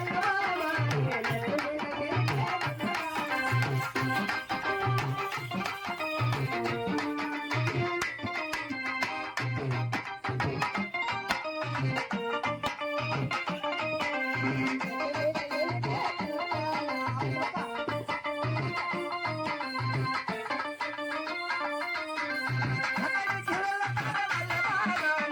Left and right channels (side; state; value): both; identical; correlation 1.00